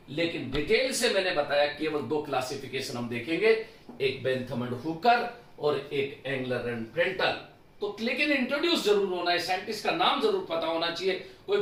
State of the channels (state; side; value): identical; both; correlation 1.00